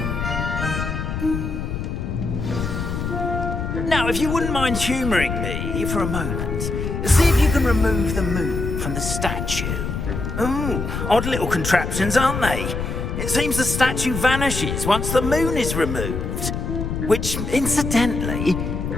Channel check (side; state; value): left; noise; rumble, 3 dB below the sound